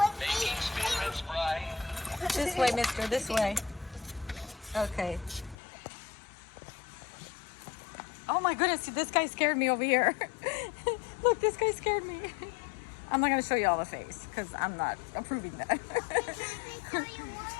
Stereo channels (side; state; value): right; drops out; at 5.6 s